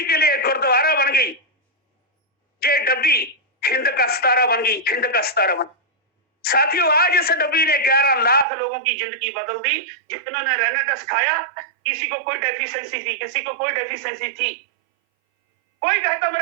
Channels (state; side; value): drops out; left; at 8.5 s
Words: के लिए गुरुद्वारा बन गई। ये डब्बी हिंद का सितारा बन गई, हिंद का सितारा बन। साथियों, आज इस डब्बी ने 11 लाख लोगों की जिंदगी बदल दी, जिन्होंने रेनाटस खाया। किसी को कोई डेफिशिएंसी थी, किसी को कोई डेफिशिएंसी थी। कोई कहता